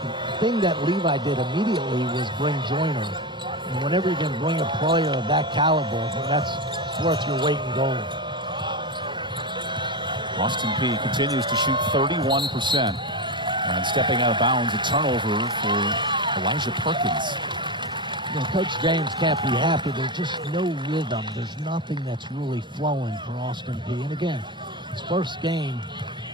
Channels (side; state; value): both; normal; correlation 0.16